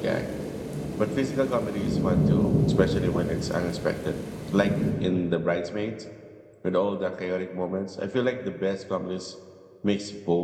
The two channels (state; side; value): identical; both; correlation 1.00